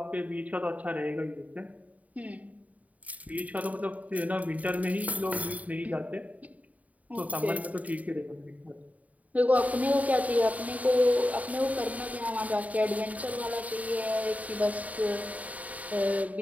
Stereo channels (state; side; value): late; left; 0.071 ms